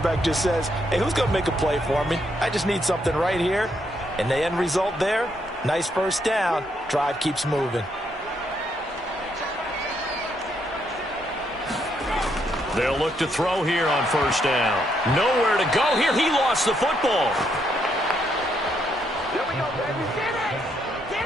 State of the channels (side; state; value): both; normal; correlation 0.75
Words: just says, hey, who's going to make a play for me? I just need something right here. And the end result there, nice first down. Drive keeps moving. They'll look to throw here on first down. Nowhere to go here. He lost the football. Here we go, baby. Get it! Get